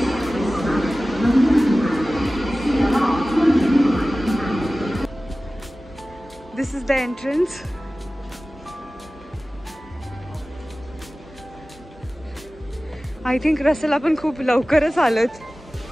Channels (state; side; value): normal; both; correlation 0.97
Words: This is the entrance. I think Russell आपण खूप लवकरच आलोत.